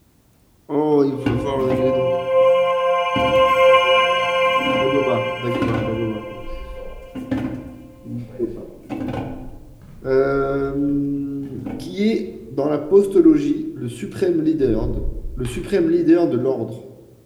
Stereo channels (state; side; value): identical; both; correlation 1.00